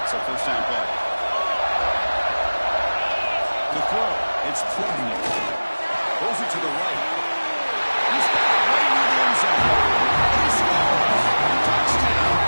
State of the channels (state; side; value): inverted; both; correlation -1.00